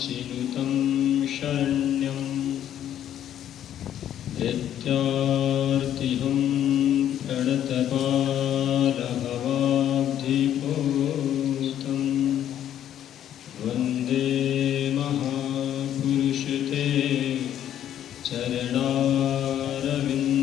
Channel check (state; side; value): quieter; right; 10.8 dB